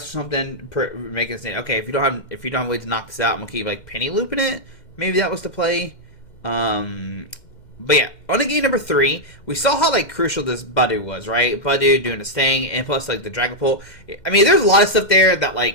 making it say, okay, if you don't have a way to knock this out, I'm gonna keep like penny looping it. Maybe that was the play. But yeah, on to game number 3, we saw how like crucial this Budu was, right? Budu doing his thing, and plus like the Dragapult. I mean, there's a lot of stuff there that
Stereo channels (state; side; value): late; right; 2.1 ms